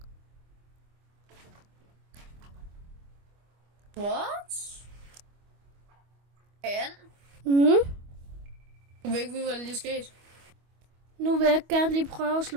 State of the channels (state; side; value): late; left; 25 ms